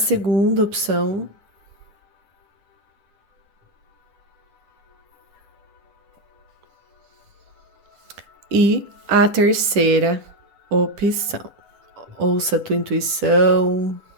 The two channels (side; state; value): left; late; 10 ms